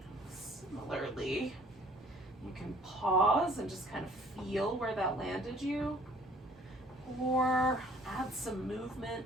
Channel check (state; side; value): normal; both; correlation 0.56